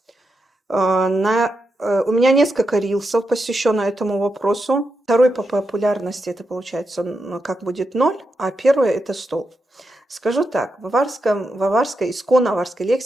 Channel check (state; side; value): normal; both; correlation 0.86